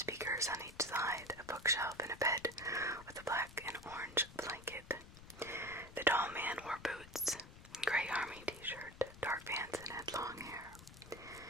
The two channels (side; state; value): left; noise; rumble, 17 dB below the sound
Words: on each side, a bookshelf, and a bed with a black and orange blanket. The tall man wore boots, gray army t-shirt, dark pants, and had long hair.